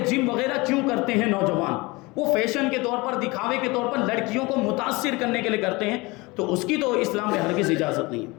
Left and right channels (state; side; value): quieter; right; 23.8 dB